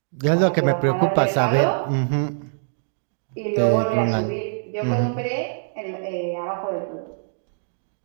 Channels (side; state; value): left; silent; digital silence